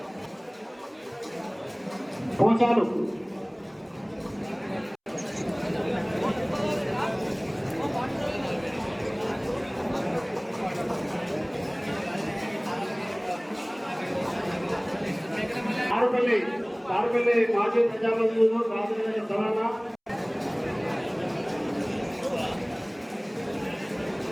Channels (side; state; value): both; identical; correlation 1.00